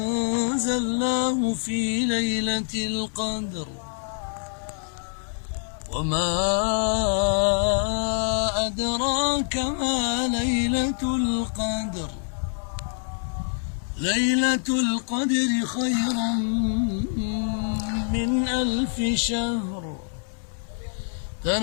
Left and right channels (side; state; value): right; silent; digital silence